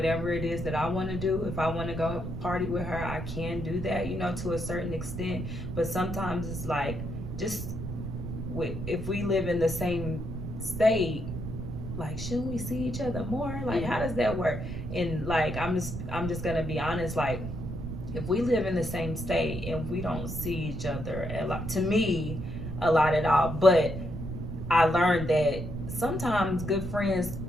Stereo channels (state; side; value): noise; right; rumble, 6 dB below the sound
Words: it is that I want to do. If I want to go party with her, I can do that, to a certain extent. But sometimes it's like, just if we live in the same state, like, shouldn't we see each other more? Like, how does that work? And like, I'm just gonna be honest, like, if we live in the same state and we don't see each other a lot, to me, a lot at all. But I learned that sometimes good friends